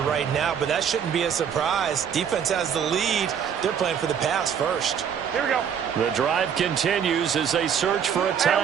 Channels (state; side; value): quieter; left; 7.9 dB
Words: right now, but that shouldn't be a surprise. Defense has the lead. They're playing for the pass first. Here we go. The drive continues as they search for a